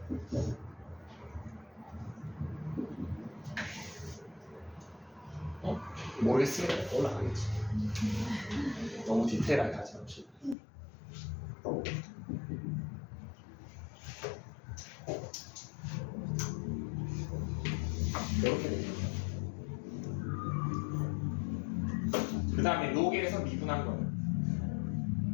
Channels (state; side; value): drops out; right; at 10.6 s